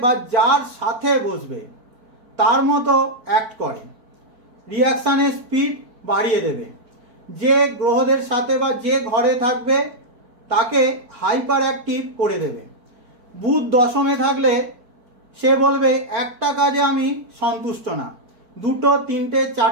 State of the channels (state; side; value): late; left; 4.6 ms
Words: বা যার সাথে বসবে তার মতো অ্যাক্ট করে, রিয়াকশানের স্পিড বাড়িয়ে দেবে। যে গ্রহদের সাথে বা যে ঘরে থাকবে তাকে হাইপার অ্যাক্টিভ করে দেবে। বুধ দশমে থাকলে সে বলবে একটা কাজে আমি সন্তুষ্ট না, দুটো, তিনটে,